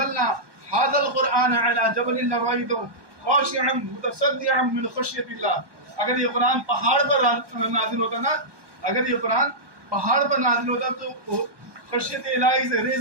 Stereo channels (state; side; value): late; left; 1.2 ms